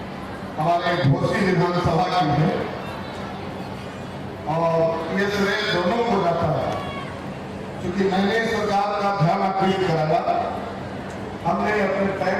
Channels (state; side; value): identical; both; correlation 1.00